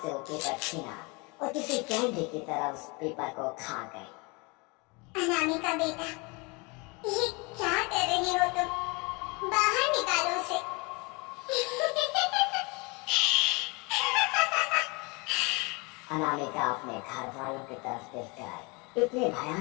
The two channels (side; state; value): right; quieter; 28.5 dB